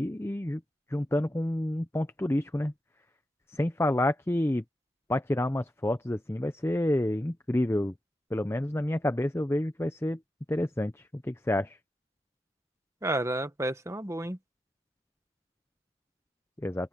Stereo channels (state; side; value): normal; both; correlation 0.89